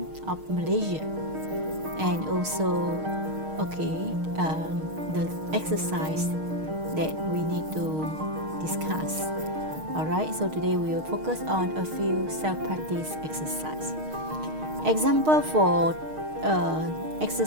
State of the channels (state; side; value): late; left; 6.5 ms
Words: of Malaysia, and also the exercise that we need to discuss. Alright, so today we will focus on a few self-practice exercise. Example for